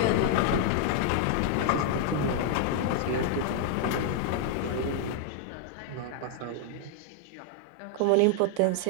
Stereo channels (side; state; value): both; different; correlation 0.00